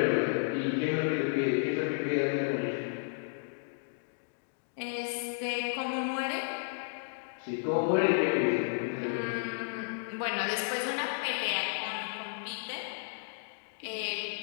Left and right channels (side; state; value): right; silent; digital silence